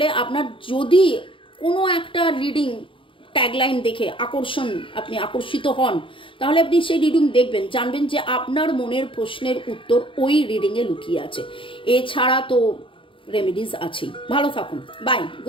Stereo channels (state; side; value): late; right; 0.25 ms